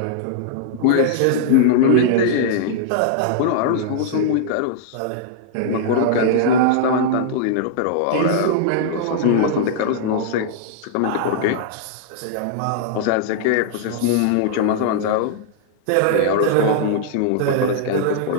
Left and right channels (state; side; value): different; both; correlation -0.01